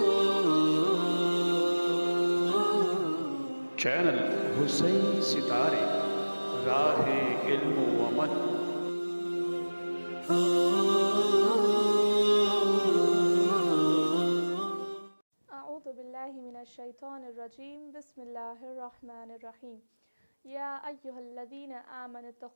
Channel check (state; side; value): inverted; both; correlation -1.00